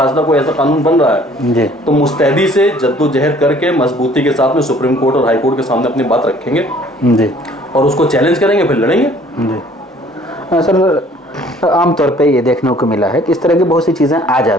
कोई ऐसा कानून बन रहा है जी, तो मुस्तैदी से जद्दोजहद करके मजबूती के साथ में सुप्रीम कोर्ट और हाई कोर्ट के सामने अपनी बात रखेंगे जी और उसको चैलेंज करेंगे, फिर लड़ेंगे। जी। सर आमतौर पे ये देखने को मिला है कि इस तरह की बहुत सी चीज़ें आ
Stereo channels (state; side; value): normal; both; correlation 0.56